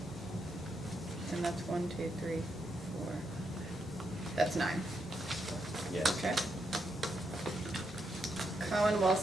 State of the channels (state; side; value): normal; both; correlation 0.81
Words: And that's 1, 2, 3, 4. That's 9. Yes. Okay. Commonwealth